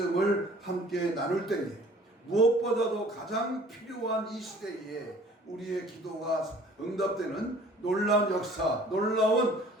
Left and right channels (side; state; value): both; normal; correlation 0.52